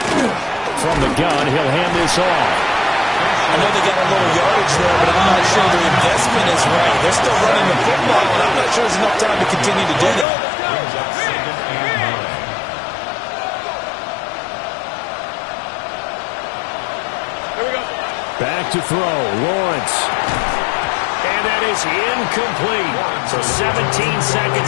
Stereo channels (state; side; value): drops out; right; at 10.2 s